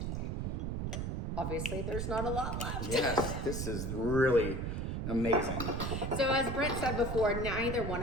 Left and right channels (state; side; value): noise; right; rumble, 2 dB below the sound